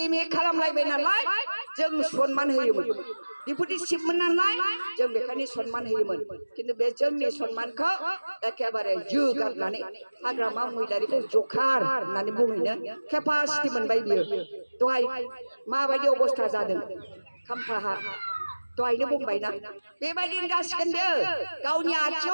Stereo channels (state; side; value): inverted; both; correlation -1.00